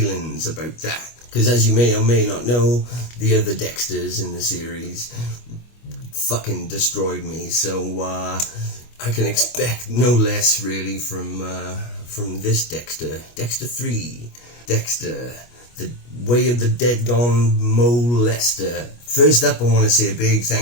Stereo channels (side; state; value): right; late; 25 ms